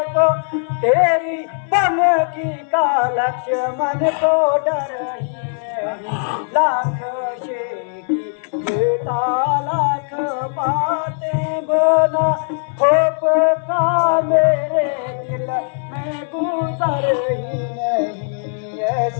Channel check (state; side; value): silent; right; 58 dB below the other